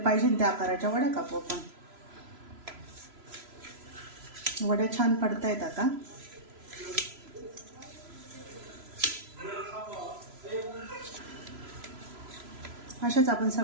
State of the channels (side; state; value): left; late; 3.0 ms